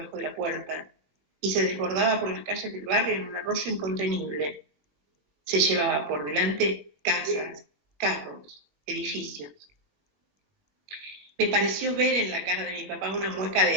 de la puerta, y se desbordaba por las calles del barrio en un arroyo incontenible. Se llevaba por delante casas, carros, edificios. Me pareció ver en la cara de mi papá una mueca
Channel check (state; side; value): late; left; 21 ms